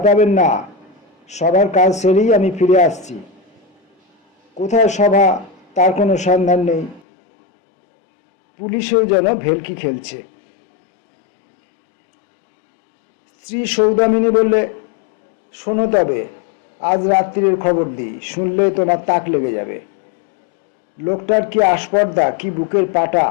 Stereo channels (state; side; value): drops out; right; at 7.0 s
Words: পাবেন না, সবার কাজ সেরেই আমি ফিরে আসছি। কোথায় সভা তার কোনো সন্ধান নেই। পুলিশেও যেন ভেলকি খেলছে। স্ত্রী সৌদামিনী বললে, শোনো তবে, আজ রাত্রির খবর দিই, শুনলে তোমার তাক লেগে যাবে। লোকটার কি আস্পর্ধা, কি বুকের পাটা।